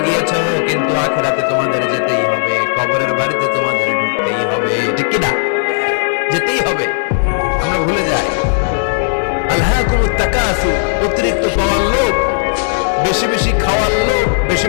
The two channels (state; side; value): silent; right; 70 dB below the other